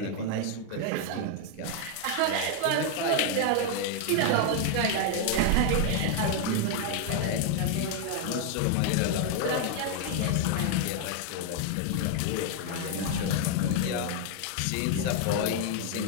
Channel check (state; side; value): different; both; correlation 0.00